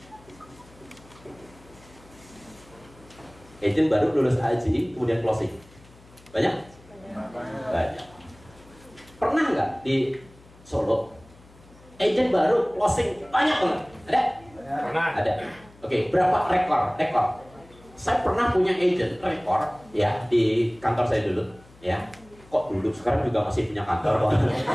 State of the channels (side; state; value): left; noise; hum, 25 dB below the sound